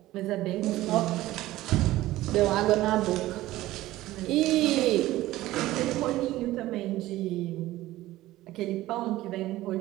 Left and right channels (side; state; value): left; quieter; 16.3 dB